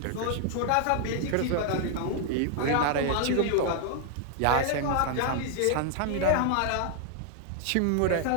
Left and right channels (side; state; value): both; different; correlation 0.00